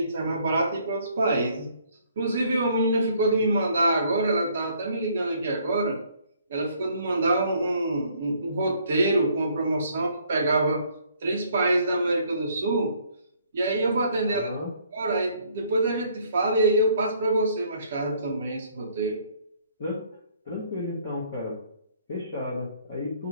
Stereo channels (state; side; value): inverted; both; correlation -0.64